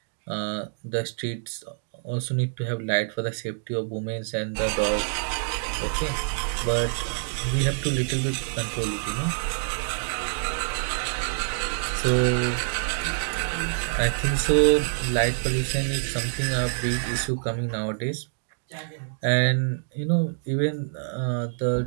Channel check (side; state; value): left; silent; digital silence